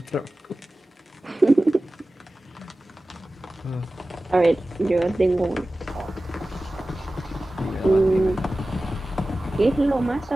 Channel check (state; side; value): normal; both; correlation 0.96